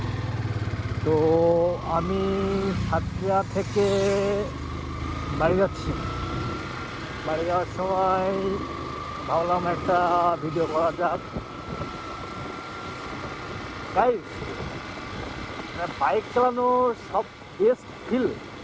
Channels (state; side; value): identical; both; correlation 1.00